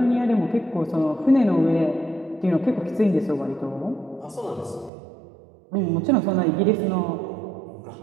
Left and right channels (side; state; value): left; drops out; at 4.9 s